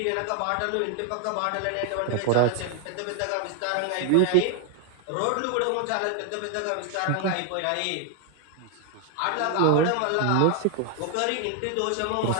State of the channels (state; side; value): different; both; correlation 0.00